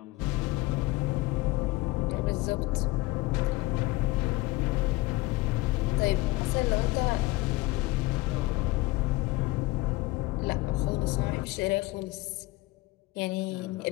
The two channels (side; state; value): right; quieter; 20.7 dB